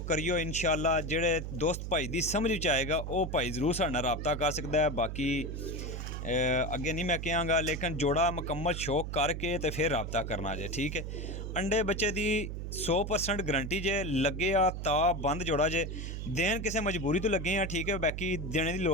करियो इंशाअल्लाह। जेड़े दोस्त भाई दी समझ विच आएगा वो भाई जरूर साडे नाल राबता कर सकता है। बाकी अगे नहीं मैं कहांगा, लेकिन जोड़ा मुकम्मल शौक करके तो फिर राबता करना जे, ठीक है। अंडे बच्चे दी 100% गारंटी जे, लगे आ ता बंद जोड़ा जे, देन किसी मजबूरी तो लगे हैं, ठीक है। बाकी देने की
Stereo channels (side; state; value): right; noise; hum, 6 dB below the sound